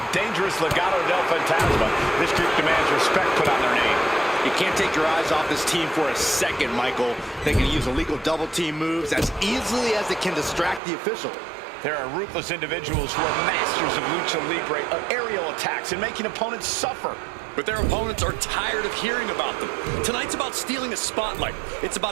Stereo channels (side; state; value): left; drops out; at 10.8 s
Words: dangerous Legado del Fantasma. This group demands respect put on their name. You can't take your eyes off this team for a second, Michael. They can use illegal double team moves as easily as it can distract the official. There are ruthless individuals who are masters of lucha libre, of aerial attacks, and making opponents suffer. But their opponents are tired of hearing about them. Tonight's about stealing a spotlight. It's